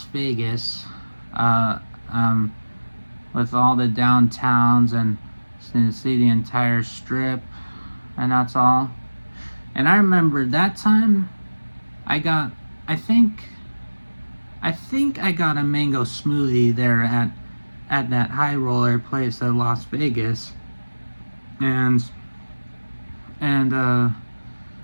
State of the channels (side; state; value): both; inverted; correlation -1.00